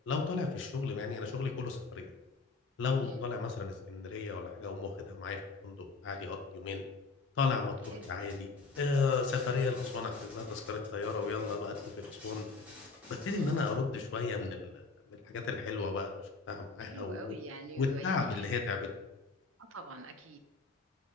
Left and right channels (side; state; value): right; quieter; 4.0 dB